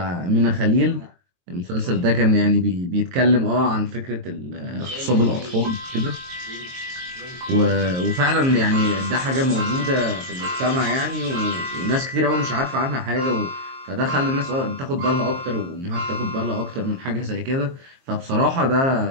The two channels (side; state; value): left; late; 22 ms